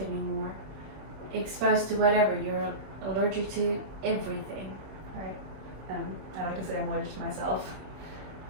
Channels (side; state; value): left; late; 26 ms